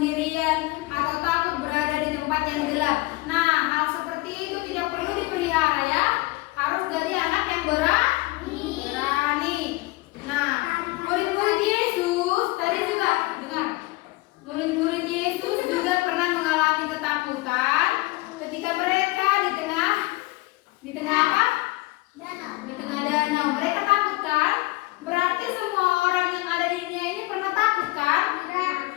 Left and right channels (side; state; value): right; quieter; 21.7 dB